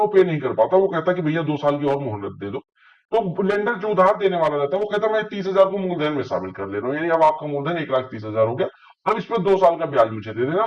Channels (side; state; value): both; identical; correlation 1.00